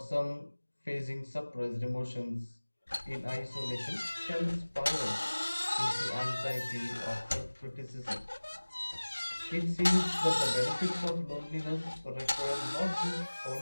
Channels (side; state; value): both; inverted; correlation -1.00